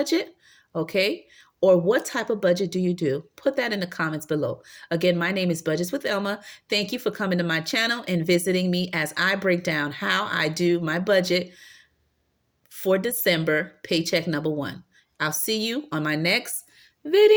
Okay, or what type of budget do you do? Put that in the comments below. Again, my name is Budgets with Elma. Thank you for coming to my channel and visiting me as I break down how I do my budget for December paycheck number 1. I'll see you on my next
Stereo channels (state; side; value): identical; both; correlation 1.00